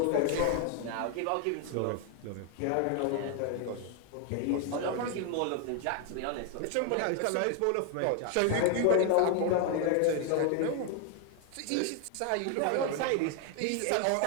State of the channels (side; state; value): both; different; correlation 0.00